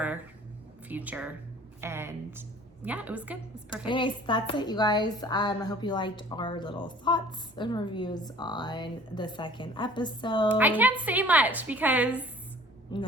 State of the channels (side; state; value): both; normal; correlation 0.49